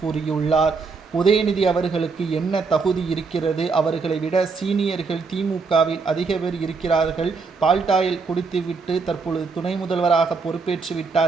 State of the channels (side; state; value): left; quieter; 4.6 dB